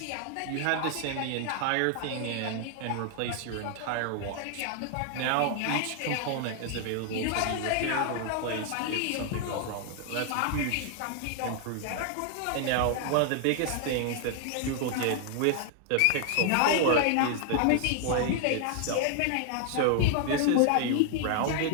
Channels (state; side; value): different; both; correlation 0.00